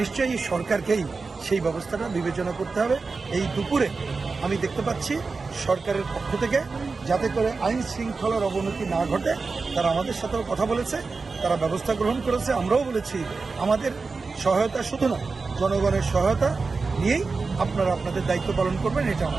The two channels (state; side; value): quieter; left; 4.3 dB